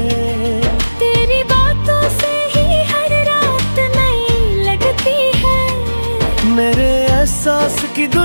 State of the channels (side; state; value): both; inverted; correlation -1.00